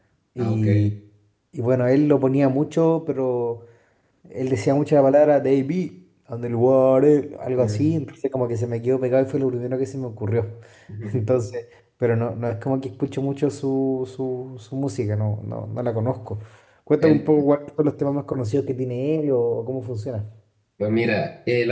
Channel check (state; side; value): identical; both; correlation 1.00